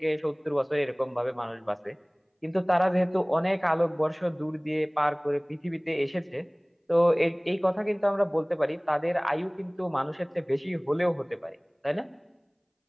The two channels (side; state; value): both; identical; correlation 1.00